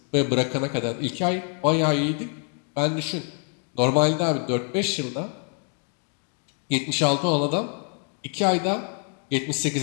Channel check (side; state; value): right; quieter; 39.9 dB